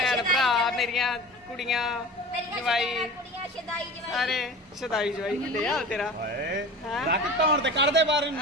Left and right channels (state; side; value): normal; both; correlation 0.36